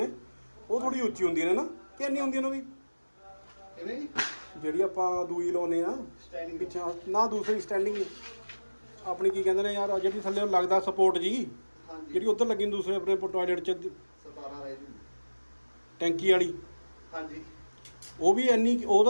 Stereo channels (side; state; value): both; inverted; correlation -1.00